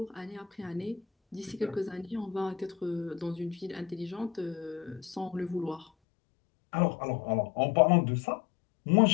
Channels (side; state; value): right; drops out; at 5.9 s